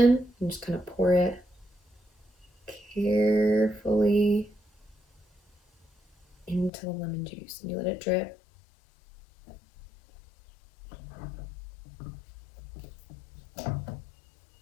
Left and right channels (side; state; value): right; drops out; at 6.7 s